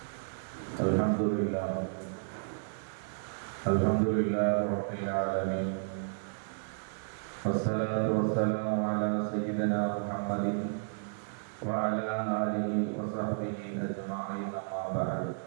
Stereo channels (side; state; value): left; silent; digital silence